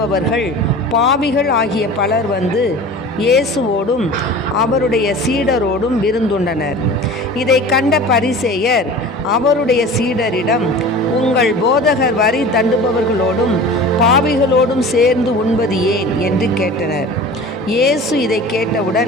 பாவிகள் ஆகிய பலர் வந்து இயேசுவோடும் அவருடைய சீடரோடும் விருந்துண்டனர். இதை கண்ட பரிசேயர் அவருடைய சீடரிடம், உங்கள் போதகர் வரி தண்டுபவர்களோடும் பாவிகளோடும் சேர்ந்து உண்பது ஏன் என்று கேட்டனர். இயேசு இதை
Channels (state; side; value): normal; both; correlation 0.38